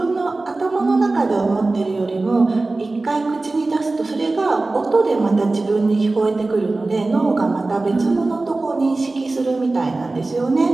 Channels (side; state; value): left; quieter; 3.2 dB